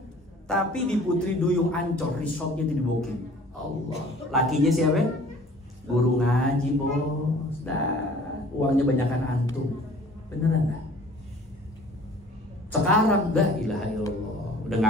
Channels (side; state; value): both; normal; correlation 0.50